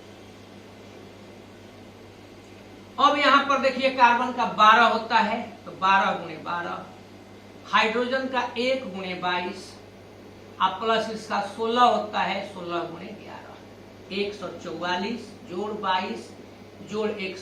अब यहाँ पर देखिए कार्बन का 12 होता है, तो 12 गुणे 12, हाइड्रोजन का 1 गुणे 22 अब प्लस इसका 16 होता है, 16 गुणे 11, 144 जोड़ 22 जोड़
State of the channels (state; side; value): identical; both; correlation 1.00